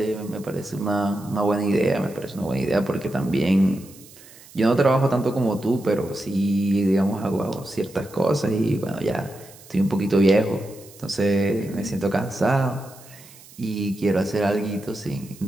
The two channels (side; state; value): right; noise; hiss, 22 dB below the sound